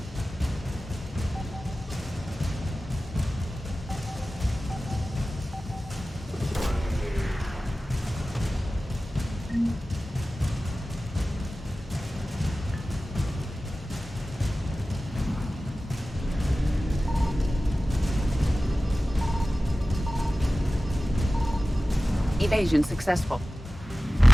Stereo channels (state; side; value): normal; both; correlation 0.96